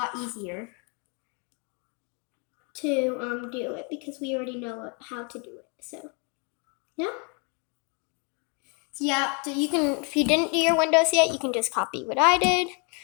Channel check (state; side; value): quieter; right; 35.5 dB